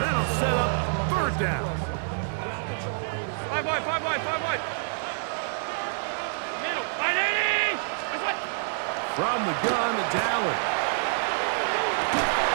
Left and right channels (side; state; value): left; silent; 60 dB below the other